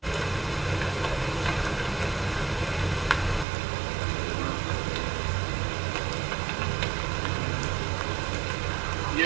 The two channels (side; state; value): left; drops out; at 3.5 s